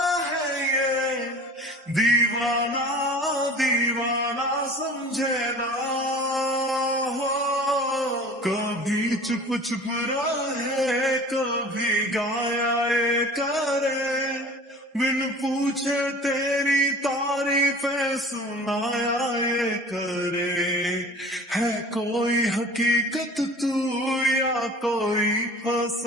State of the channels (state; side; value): normal; both; correlation 0.42